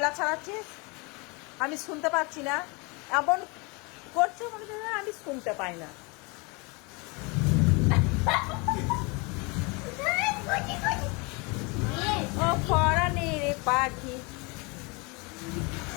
ছাড়াচ্ছিস? আমি শুনতে পাচ্ছি না এমন করছে মনে হয় আমি শুনতে পাই না। ও ফরানি রে পাখি,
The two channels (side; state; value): right; quieter; 29.1 dB